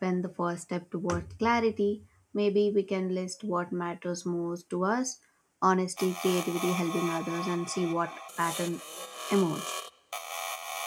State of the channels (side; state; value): both; identical; correlation 1.00